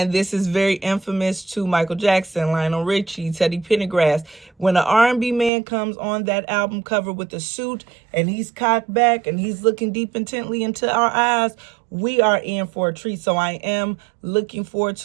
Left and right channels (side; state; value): left; drops out; at 5.5 s